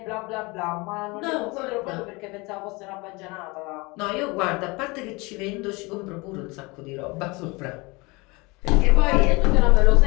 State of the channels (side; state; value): right; quieter; 25.6 dB